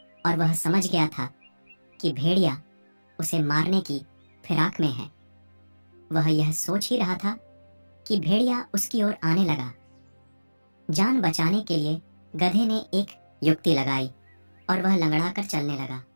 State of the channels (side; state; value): both; inverted; correlation -1.00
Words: और वह समझ गया था कि भेड़िया उसे मारने की फिराक में है। वह यह सोच ही रहा था कि भेड़िया उसकी ओर आने लगा। जान बचाने के लिए गधे ने एक युक्ति लगाई और वह लंगड़ाकर चलने लगा।